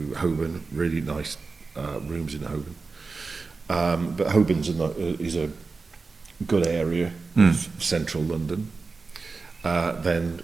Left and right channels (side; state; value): left; quieter; 4.2 dB